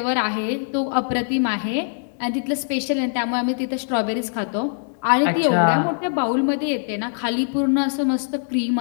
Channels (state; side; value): silent; right; digital silence